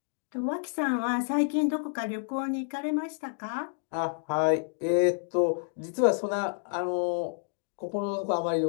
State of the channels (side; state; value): right; silent; digital silence